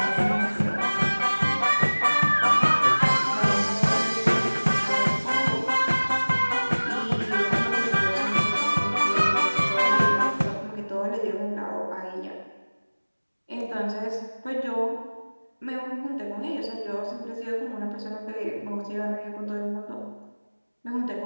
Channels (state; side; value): inverted; both; correlation -1.00